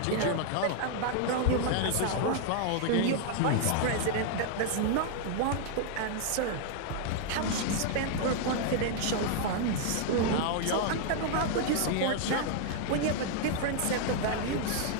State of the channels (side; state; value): both; different; correlation 0.00